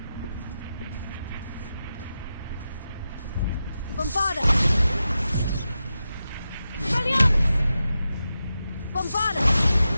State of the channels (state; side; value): inverted; both; correlation -0.90